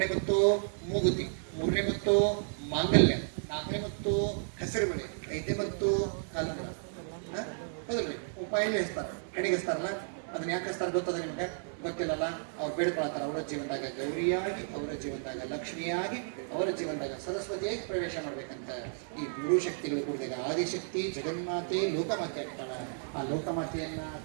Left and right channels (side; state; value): left; silent; digital silence